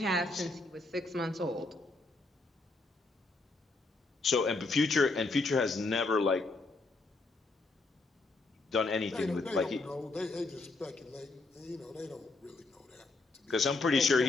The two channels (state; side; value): quieter; right; 3.4 dB